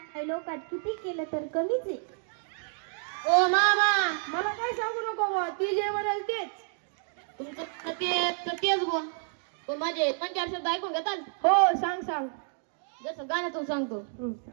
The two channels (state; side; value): silent; left; 58 dB below the other